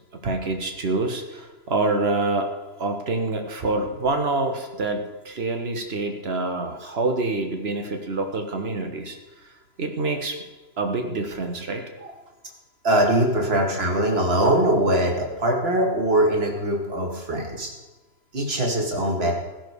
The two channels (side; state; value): left; late; 2.9 ms